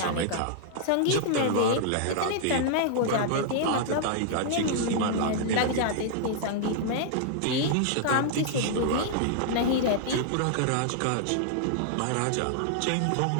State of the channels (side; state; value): both; different; correlation -0.01